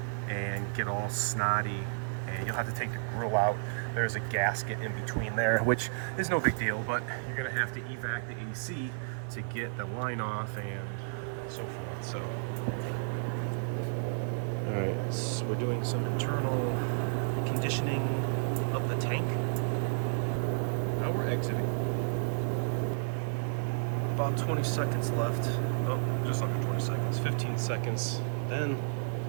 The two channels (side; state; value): left; silent; 56 dB below the other